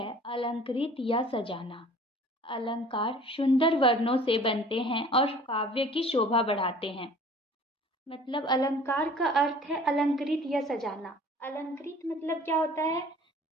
अलंकृत या सजाना। अलंकार सुंदर वर्णों से बनते हैं और काव्य की शोभा बढ़ाते हैं। मतलब अलंकार का अर्थ है अलंकृत या सजाना। अलंकृत मतलब क्या होता है,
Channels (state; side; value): normal; both; correlation 0.48